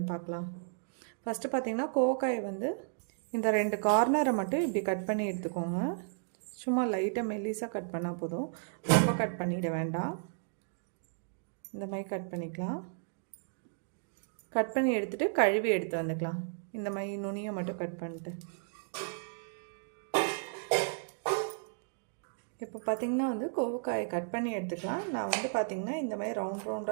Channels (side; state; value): left; silent; digital silence